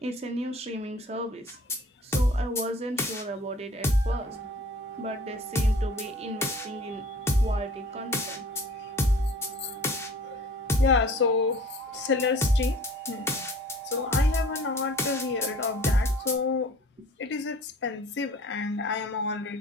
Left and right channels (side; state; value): both; normal; correlation 0.48